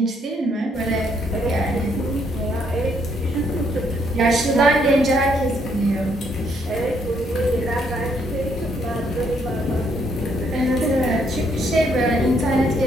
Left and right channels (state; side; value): normal; both; correlation 0.71